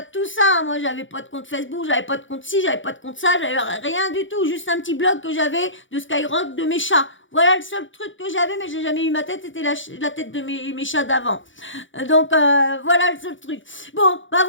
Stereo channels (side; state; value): right; late; 0.56 ms